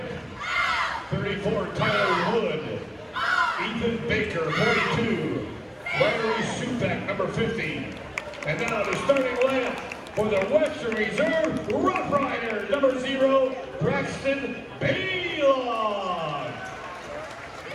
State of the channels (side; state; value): both; identical; correlation 1.00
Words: 34, Tyler Wood. Ethan Baker, 42. Larry Supak, number 50. And now the starting lineup for the Western Reserve Roughriders. Number 0, Braxton Baylon.